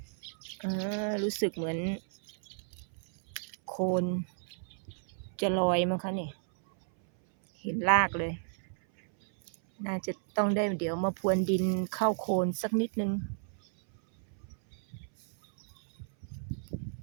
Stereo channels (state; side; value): silent; left; 56 dB below the other